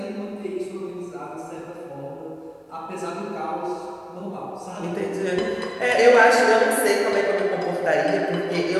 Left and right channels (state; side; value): identical; both; correlation 1.00